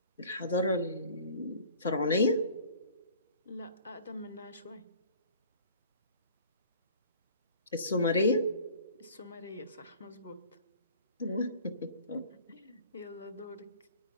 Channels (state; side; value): inverted; both; correlation -0.47